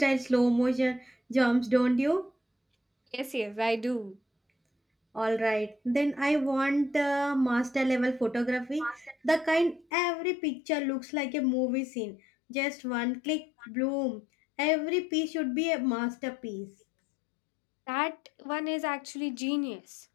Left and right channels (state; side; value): drops out; right; at 9.9 s